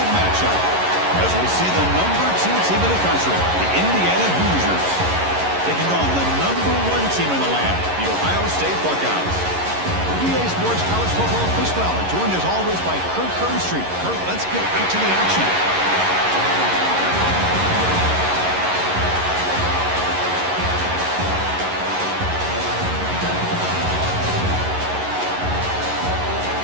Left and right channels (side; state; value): left; late; 11 ms